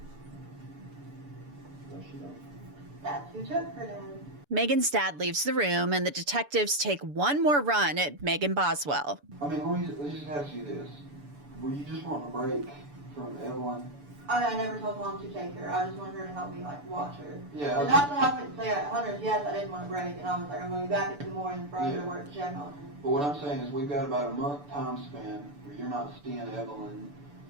No, she don't. That's who took her, Dad. Megan's dad leaves the room, and the detectives take one more run at Megan Boswell. I mean, let me just ask you this. Were you just wanting a break from Evelyn? I never told mom to take her. I just wanted her to help me, like, watch her. Yeah. And not that I wouldn't say at Hunter's, yes, I didn't want a break. And I was like, I'm going to be back in the morning for her Yeah. to work to check on her. But what I'm saying is we've got about a month time span where you're not seeing Evelyn.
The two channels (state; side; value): late; left; 6.9 ms